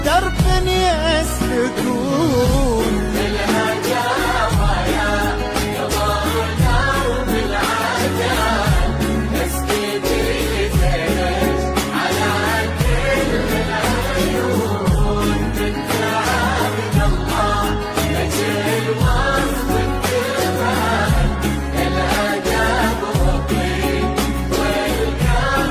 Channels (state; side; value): identical; both; correlation 1.00